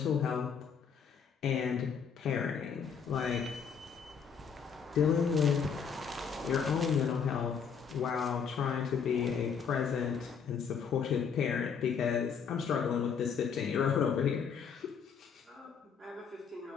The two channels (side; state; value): right; quieter; 6.7 dB